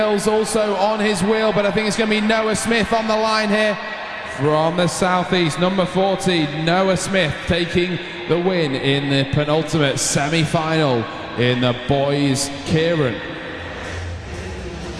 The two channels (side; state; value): both; identical; correlation 1.00